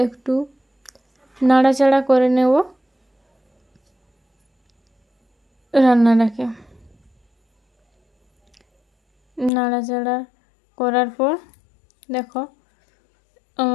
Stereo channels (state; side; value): drops out; right; at 9.5 s